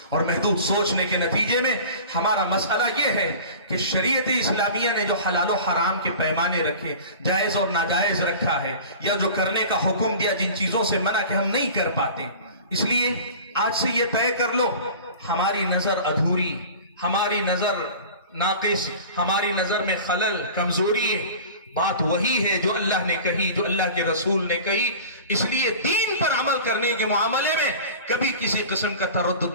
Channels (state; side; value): inverted; both; correlation -0.39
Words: اور محدود سوچنے کے نتیجے میں ہمارا مسئلہ یہ ہے کہ شریعت اسلامیہ نے جو حلال و حرام کے پیمانے رکھے، جائز اور ناجائز رکھا ہے، یا جو کرنے کا حکم دیا جن چیزوں سے منع کہ ہم نہیں کر پاتے، اس لیے آج سے یہ طے کر لو ہماری نظر ادھوری، ہماری نظر ناقص، ہماری نظر میں خلل، کمزوری ہے. بات وہی ہے جو اللہ نے کہی، جو اللہ کے رسول نے کہی. اس لیے دین پر عمل کرنے کے معاملے میں کبھی کسی قسم کا